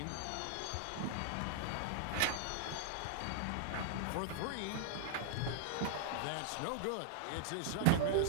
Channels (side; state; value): both; different; correlation -0.01